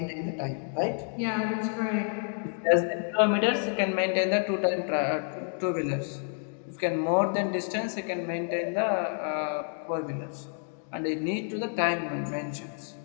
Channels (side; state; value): right; silent; 56 dB below the other